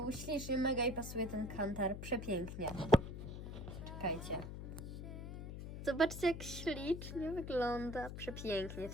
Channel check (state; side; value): noise; left; hum, 8 dB below the sound